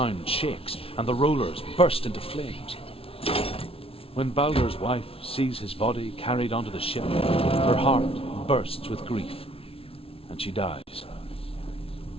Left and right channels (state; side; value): late; right; 0.27 ms